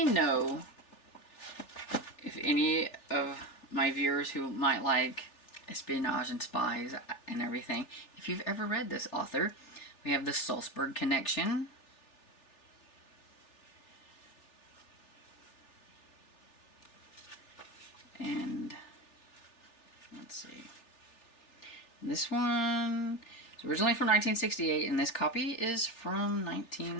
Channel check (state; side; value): late; right; 3.4 ms